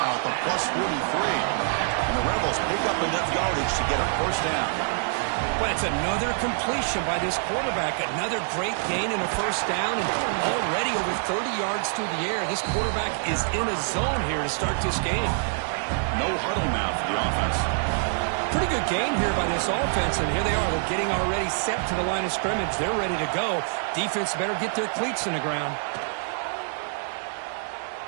at the +43. And the Rebels pick up enough yardage to get a first down. Well, it's another completion by this quarterback. Another great gain in a first down, and already over 30 yards through the air. This quarterback is in a zone here to start this game. No huddle now for the offense. Pretty good game here by this offense, and here they are. They're getting already set to the line of scrimmage. They're ready to go. Defense better get their cleats in the ground.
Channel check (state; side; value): silent; left; digital silence